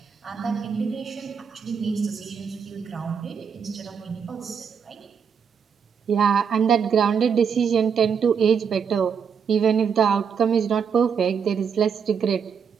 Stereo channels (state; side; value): quieter; left; 6.7 dB